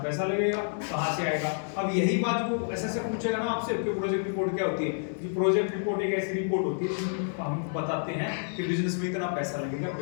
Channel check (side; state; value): right; silent; 59 dB below the other